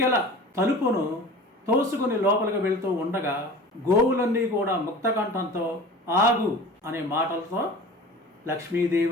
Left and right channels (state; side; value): normal; both; correlation 0.39